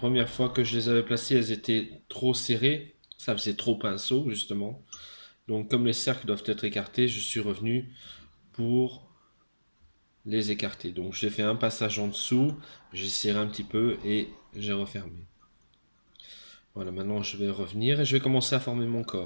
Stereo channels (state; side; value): inverted; both; correlation -1.00